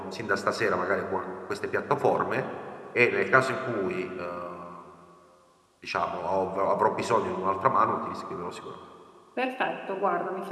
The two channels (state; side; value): identical; both; correlation 1.00